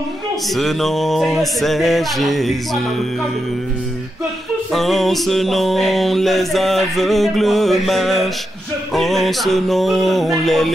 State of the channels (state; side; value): normal; both; correlation 0.86